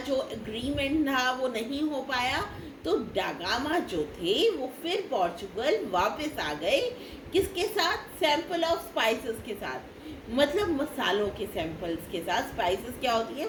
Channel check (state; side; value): identical; both; correlation 1.00